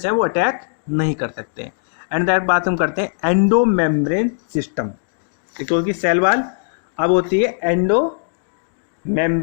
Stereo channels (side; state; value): right; silent; digital silence